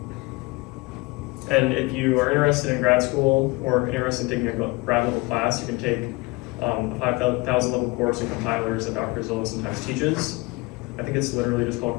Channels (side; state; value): right; quieter; 24.2 dB